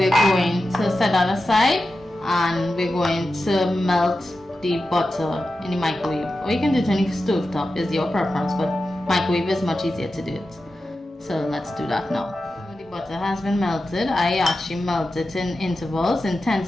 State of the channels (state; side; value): normal; both; correlation 0.92